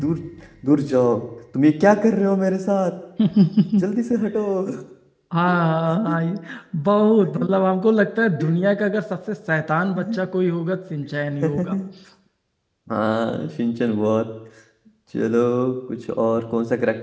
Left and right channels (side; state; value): both; identical; correlation 1.00